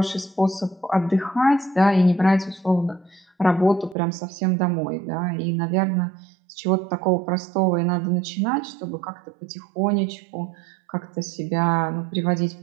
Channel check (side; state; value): left; drops out; at 4.0 s